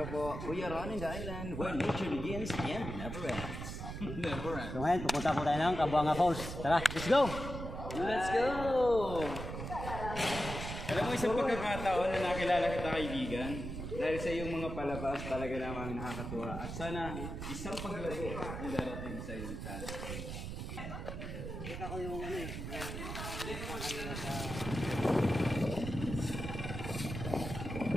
po, we are on in the island where nature begins and never ends. Never ends. So ngayon, pupunta po tayo ng Kabuanga Falls. Tara, let's go! Let's go! Alam mo, isang pagkakataon na nakilala kita kaibigan, dahil sa iyong mga palabas talaga naman nakakatuwa. At sana isang paglago ang darating sa iyong talent. Kita ko yung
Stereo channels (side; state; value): right; noise; rumble, 6 dB below the sound